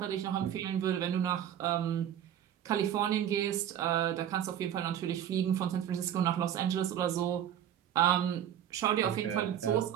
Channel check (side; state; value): left; quieter; 10.3 dB